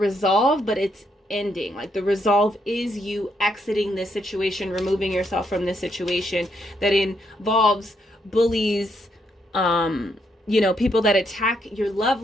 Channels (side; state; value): both; normal; correlation 0.76